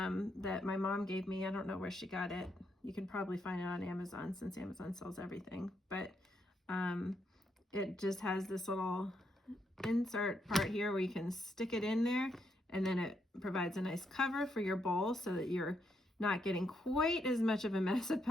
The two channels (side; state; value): both; normal; correlation 0.78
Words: my mom gave me. I don't know where she got it. You can probably find it on Amazon since Amazon sells everything. But it just has this little insert part here where you can stick it in there, and then it provides a nice cover for your bowl so that you're not getting quite as much of a mess of